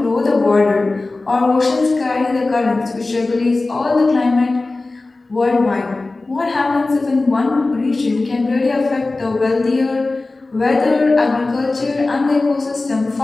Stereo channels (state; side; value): quieter; right; 3.3 dB